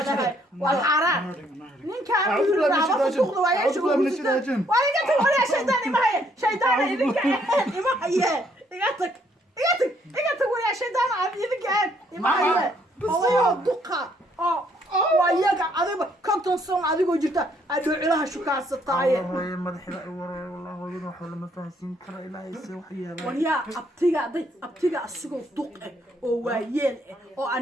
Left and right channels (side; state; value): both; normal; correlation 0.68